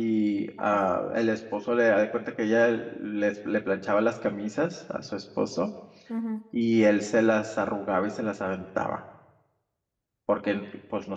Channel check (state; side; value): identical; both; correlation 1.00